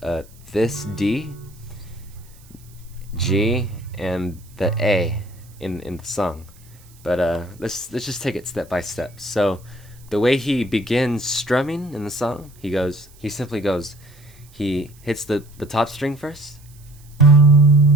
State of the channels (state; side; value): noise; right; hiss, 27 dB below the sound